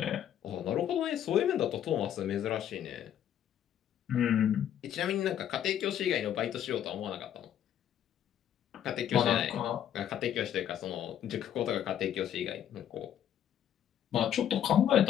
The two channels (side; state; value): right; quieter; 10.3 dB